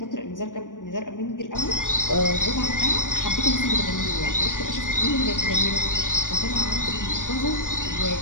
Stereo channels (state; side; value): late; right; 0.88 ms